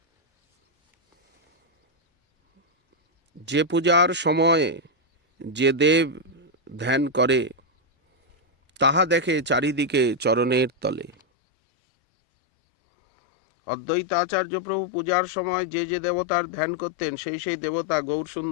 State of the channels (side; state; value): right; drops out; at 11.2 s